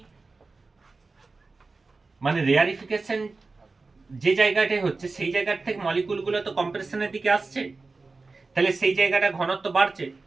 মানে রেয়ারিফিকেশন যে জায়গাটায় হচ্ছে সেই জায়গা থেকে মলিকুলগুলো তো কম্প্রেশনের দিকে আসছে, তাহলে সেই জায়গাটা ঘনত্ব বাড়ছে,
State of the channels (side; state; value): left; quieter; 3.8 dB